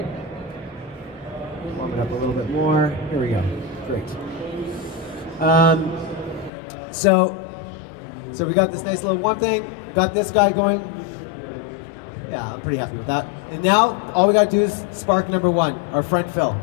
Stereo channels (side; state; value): right; drops out; at 6.5 s